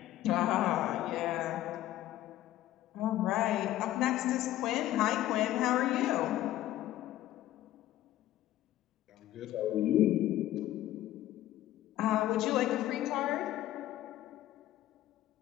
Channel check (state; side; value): quieter; right; 14.0 dB